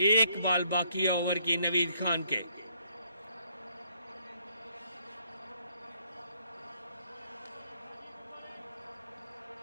1 बॉल बाकी है ओवर की नवीद खान के।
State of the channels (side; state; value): both; inverted; correlation -0.69